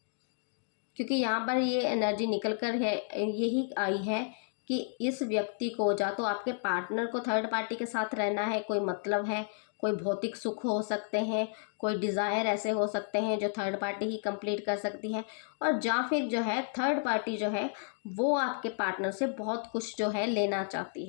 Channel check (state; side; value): silent; right; digital silence